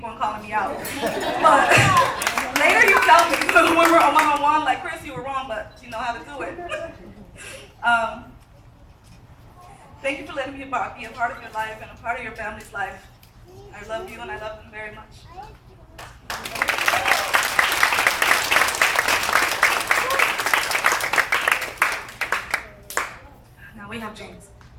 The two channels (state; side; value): identical; both; correlation 1.00